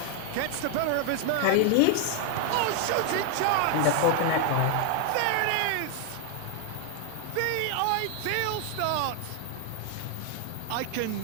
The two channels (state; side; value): different; both; correlation 0.00